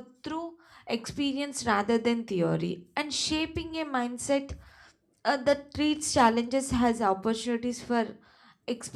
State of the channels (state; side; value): identical; both; correlation 1.00